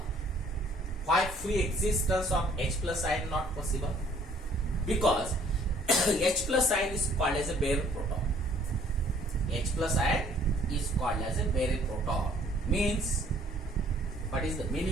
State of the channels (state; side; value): normal; both; correlation 0.59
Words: Why free existence of H plus ion not possible? Because H plus ion is called as a bare proton. H plus ion is called as a bare proton. Means, what is the